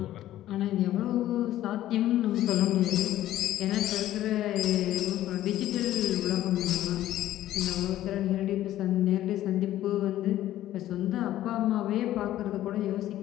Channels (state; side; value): quieter; right; 13.6 dB